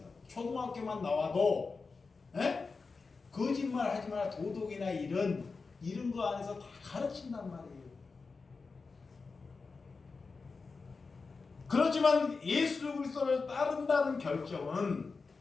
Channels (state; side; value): quieter; right; 4.4 dB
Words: 초등학교만 나와도 거짓말 하지 마라. 도덕이나 이런 거 안에서 다 가르친단 말이에요. 그렇지만 예수 그리스도를 따른다는 결정은